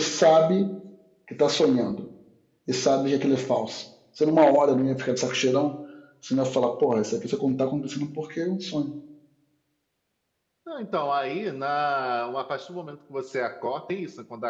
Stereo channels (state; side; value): identical; both; correlation 1.00